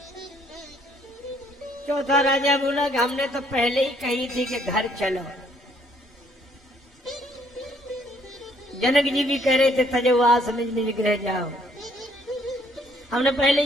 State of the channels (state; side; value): normal; both; correlation 0.65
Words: चौथा राजा बोला कि हमने तो पहले ही कही थी कि घर चलो। जनक जी भी कह रहे थे तजवास निज निज गृह जाओ, हमने पहले